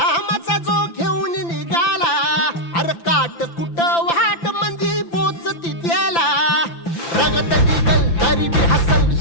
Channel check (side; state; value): right; late; 5.9 ms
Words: जो घेऊन निघाला, अरे काट कुट वाट मंदी पोचती त्याला, रगत निघल तरी बी हसल